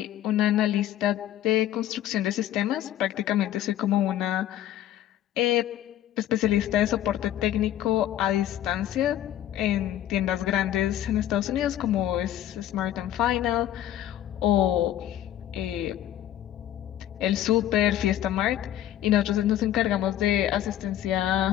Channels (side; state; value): right; quieter; 12.1 dB